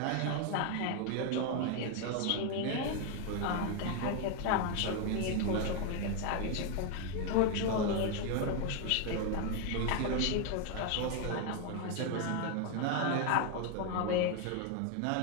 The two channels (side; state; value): both; different; correlation 0.01